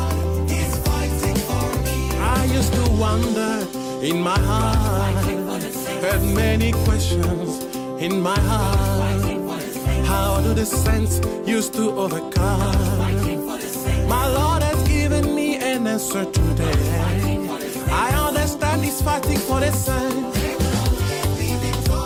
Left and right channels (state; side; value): identical; both; correlation 1.00